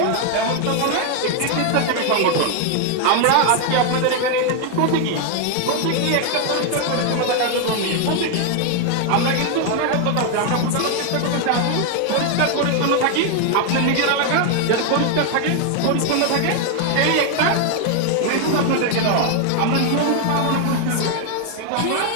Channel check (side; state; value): both; different; correlation 0.01